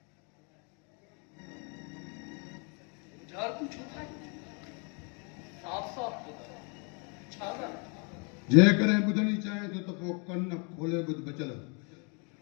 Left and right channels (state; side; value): quieter; right; 35.1 dB